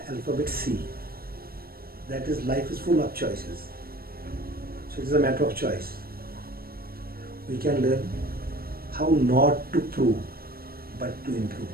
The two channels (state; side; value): late; left; 0.44 ms